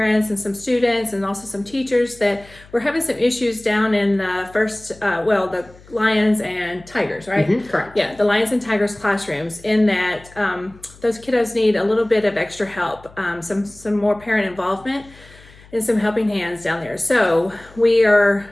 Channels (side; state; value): left; noise; hum, 24 dB below the sound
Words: and some students and also some teachers that we're having some issues down in the the Lions and Tigers, right? Correct. Yeah, the Lions and Tigers classrooms, in that those kiddos need a little bit of extra help, some more parent involvement and some helping hands down there. So